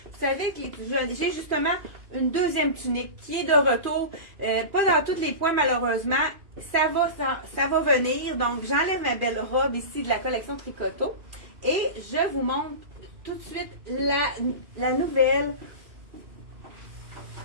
savez que j'ai justement une deuxième tunique qui est de retour. Pas dans tous les points, malheureusement. Ça va venir. Donc, j'enlève ma belle robe ici de la collection Tricoteau. Et je vous montre tout de suite la nouvelle...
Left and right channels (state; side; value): late; left; 2.4 ms